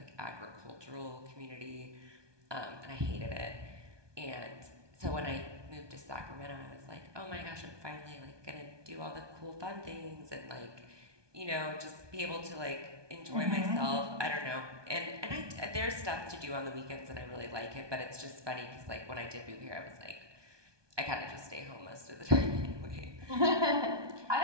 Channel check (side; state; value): left; late; 1.2 ms